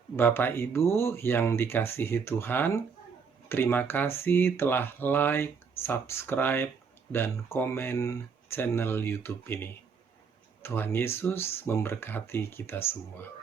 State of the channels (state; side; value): quieter; left; 5.8 dB